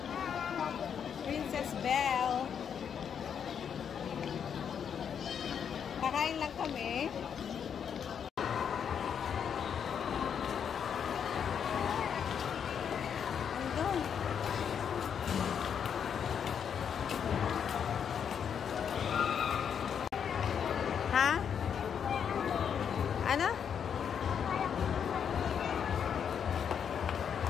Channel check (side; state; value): right; quieter; 7.7 dB